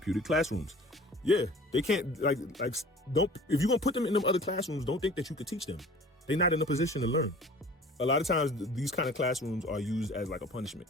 classrooms. Yeah, they can't don't. If you're gonna put them in them other classrooms, don't think that you could teach them. They're not in a position to learn. A lot of times, these kind of classrooms are used as like a punishment.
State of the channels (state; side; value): normal; both; correlation 0.46